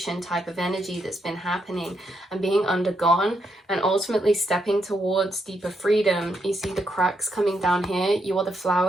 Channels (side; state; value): both; normal; correlation 0.79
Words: type of energy that's been happening and being undergone, and ultimately stepping towards deeper freedom. You see the cracks coming down here. You are the